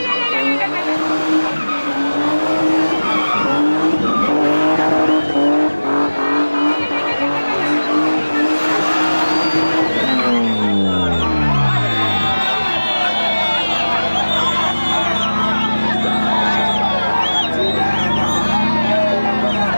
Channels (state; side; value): inverted; both; correlation -1.00